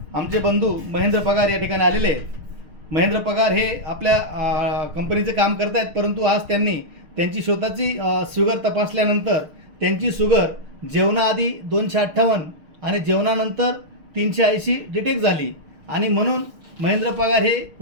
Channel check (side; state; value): left; late; 6.5 ms